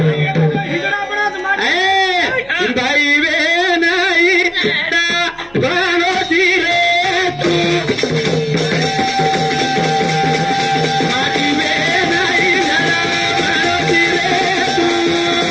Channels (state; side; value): noise; right; hum, 28 dB below the sound